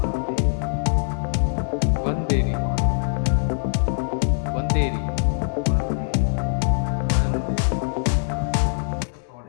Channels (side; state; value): right; silent; digital silence